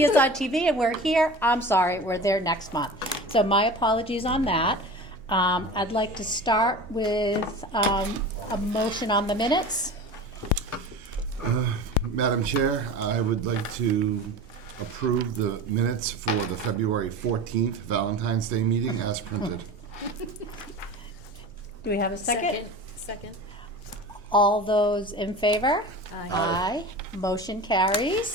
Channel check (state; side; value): normal; both; correlation 0.34